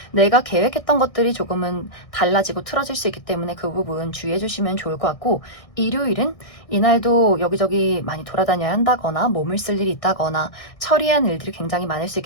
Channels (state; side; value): late; right; 1.6 ms